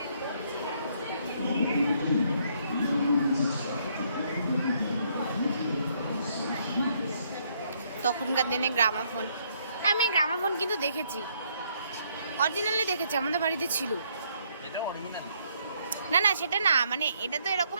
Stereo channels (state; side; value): inverted; both; correlation -0.70